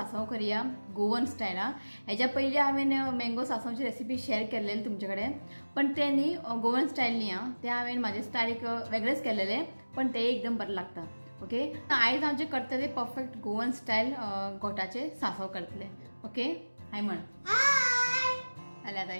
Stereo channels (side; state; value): both; inverted; correlation -1.00